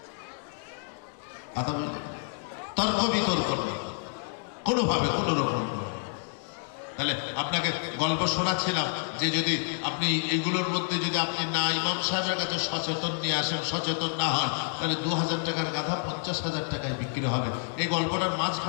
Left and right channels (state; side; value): silent; right; 59 dB below the other